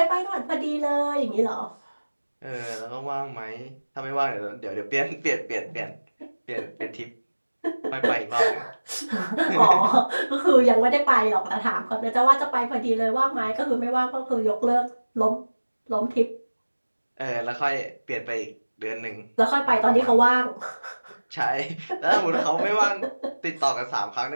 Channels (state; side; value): inverted; both; correlation -1.00